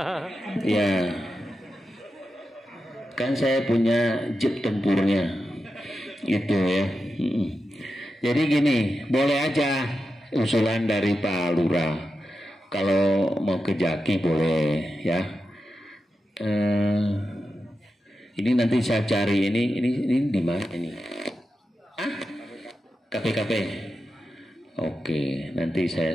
Ya. Kan saya punya jeep tempurnya. Itu ya. Jadi gini, boleh aja usulan dari Pak Lurah. Kalau mau ke Jaki boleh ya. Ini nanti saya cari ini di mana ini? KPKP. Oke, nanti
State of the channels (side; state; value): both; normal; correlation 0.90